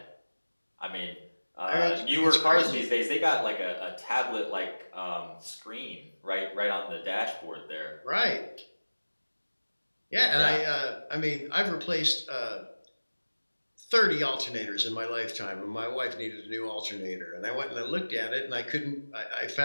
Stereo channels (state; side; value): inverted; both; correlation -1.00